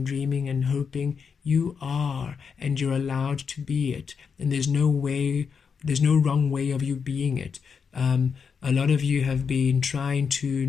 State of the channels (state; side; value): quieter; right; 6.1 dB